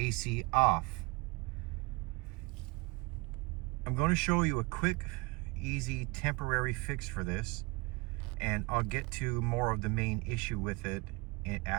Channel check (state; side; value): quieter; left; 26.3 dB